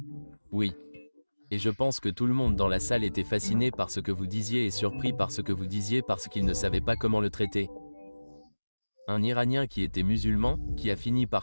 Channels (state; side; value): inverted; both; correlation -1.00